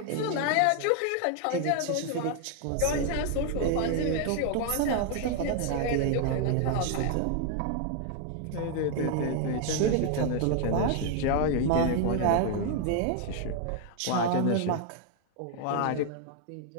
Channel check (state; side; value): different; both; correlation 0.00